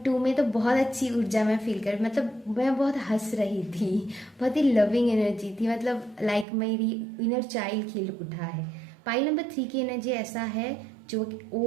2 में तो बहुत अच्छी ऊर्जा मैं फील कर, मतलब मैं बहुत हंस रही थी, बहुत ही लविंग एनर्जी थी, मतलब लाइक मेरी इनर चाइल्ड खिल उठा है। पाइल नंबर 3 की एनर्जी ऐसा है जो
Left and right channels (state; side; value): drops out; left; at 6.5 s